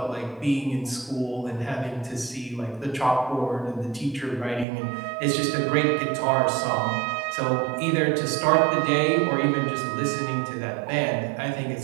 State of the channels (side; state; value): left; drops out; at 4.7 s